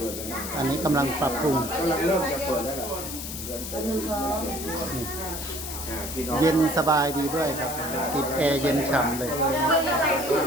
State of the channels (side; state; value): left; noise; hiss, 7 dB below the sound